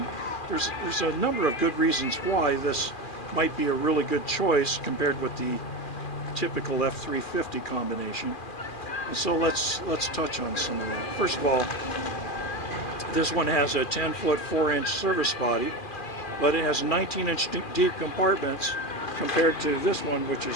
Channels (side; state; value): right; late; 2.3 ms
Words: there's a number of good reasons why this might be a really good choice compared with the typical F350 combination. And so let's touch on some of that. First of all, this one has a 10-foot 4-inch service body, but it has 19-inch deep compartments compared to this one, which